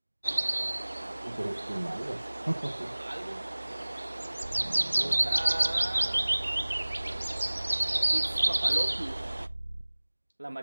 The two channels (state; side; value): inverted; both; correlation -1.00